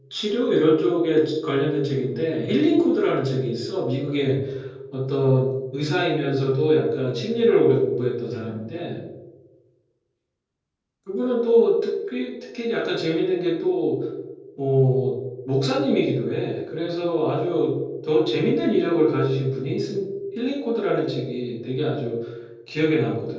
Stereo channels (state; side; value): identical; both; correlation 1.00